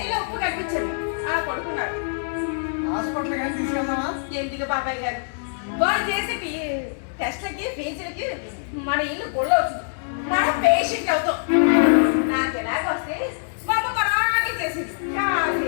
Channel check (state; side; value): silent; right; digital silence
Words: ఉప్పు కనిపించాడు. పడుకున్నాడు. హాస్పిటల్ కానీ తీసుకెళ్దామా? ఎందుకు బాబాయ్ గారు వాళ్ళు చేసే టెస్ట్లకి ఫీజులకి మన ఇల్లు గొల్ల అవుతుంది. మనం పేషెంట్ అవుతాం. నాకు ఎలాగొస్తే మా అమ్మ పరాకి చేసింది.